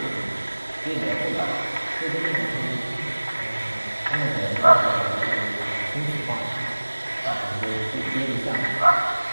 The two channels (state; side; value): inverted; both; correlation -1.00